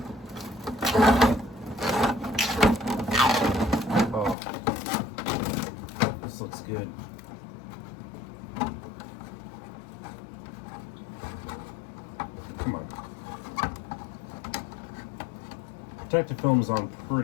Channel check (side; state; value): right; drops out; at 4.4 s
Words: Oh, this looks good. Come on. Protective film's on